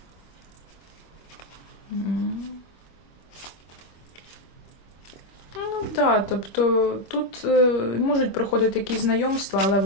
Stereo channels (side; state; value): right; late; 25 ms